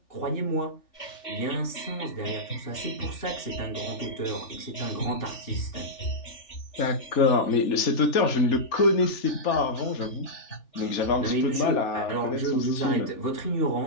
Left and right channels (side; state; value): right; late; 3.4 ms